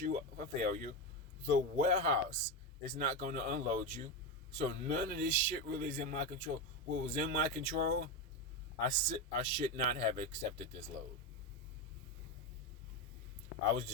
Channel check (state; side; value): normal; both; correlation 0.13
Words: up for failure. The warehouse is not going to unload you. So none of this shit really is in my control. What was in my control, I should not have accepted this load. I was